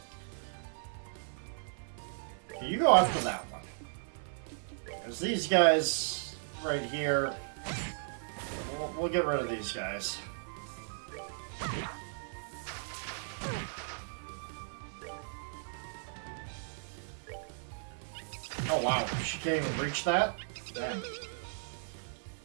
Okay, you go after that one. Because these guys right here, we'll get rid of these guys. Oh wow, she can't even reach that? Damn.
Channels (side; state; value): left; silent; 54 dB below the other